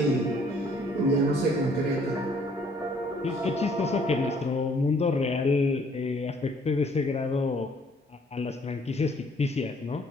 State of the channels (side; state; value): both; normal; correlation 0.61